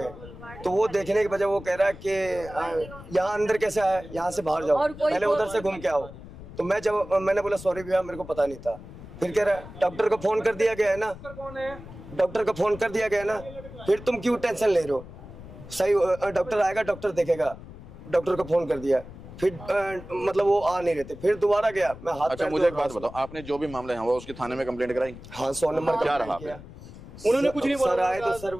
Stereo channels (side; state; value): left; noise; rumble, 15 dB below the sound